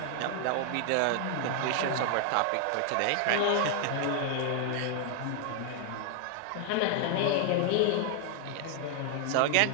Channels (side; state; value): both; different; correlation 0.00